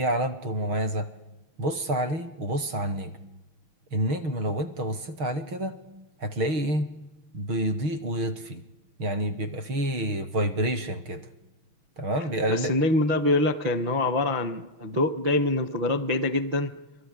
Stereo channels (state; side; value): late; left; 6.4 ms